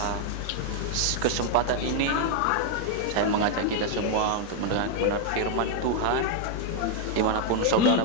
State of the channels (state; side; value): different; both; correlation 0.00